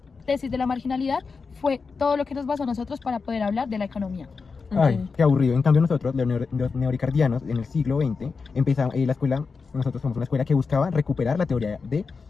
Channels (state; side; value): quieter; right; 4.8 dB